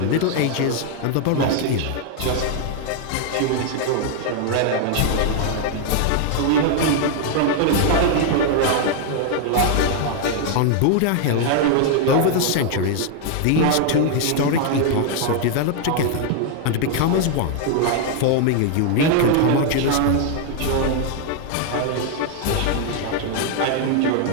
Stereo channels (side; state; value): both; different; correlation 0.00